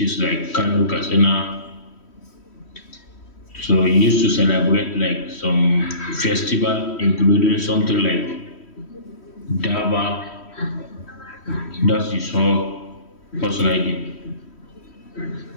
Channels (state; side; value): late; right; 3.1 ms